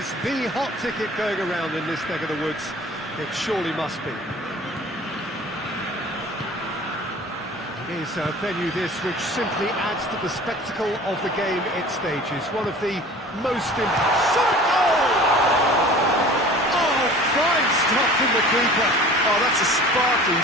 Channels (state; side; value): normal; both; correlation 0.43